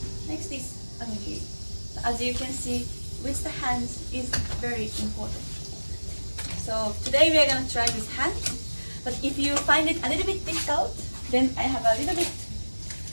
Next is onigiri. As you can see, with the hands is very important. So today we are going to try with hands. But if you find it a little bit difficult, then I have a little bit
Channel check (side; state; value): both; inverted; correlation -1.00